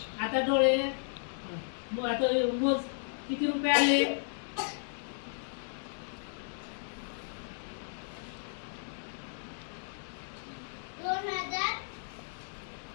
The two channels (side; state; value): right; silent; digital silence